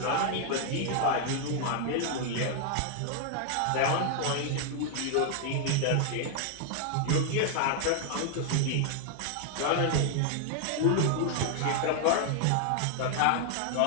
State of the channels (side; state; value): both; different; correlation 0.00